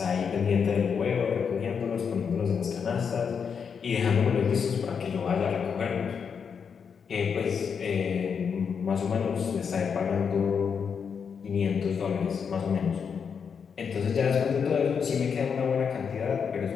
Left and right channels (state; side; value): quieter; right; 6.5 dB